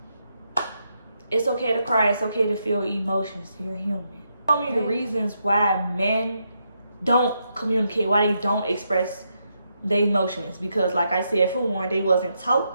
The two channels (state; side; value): inverted; both; correlation -0.81